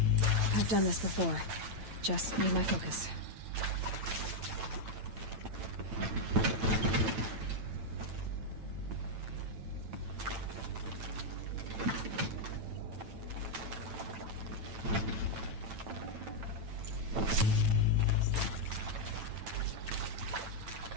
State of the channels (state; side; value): late; left; 9.0 ms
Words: I've done this before. Just need my focus.